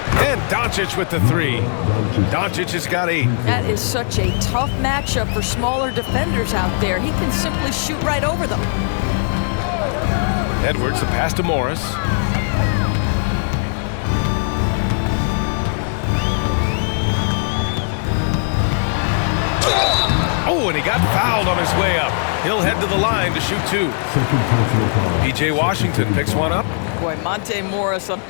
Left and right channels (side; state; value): right; silent; 64 dB below the other